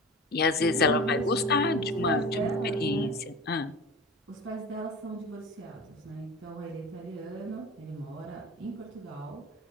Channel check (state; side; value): normal; both; correlation 0.33